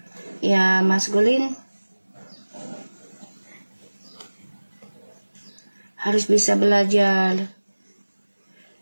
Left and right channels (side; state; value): both; inverted; correlation -1.00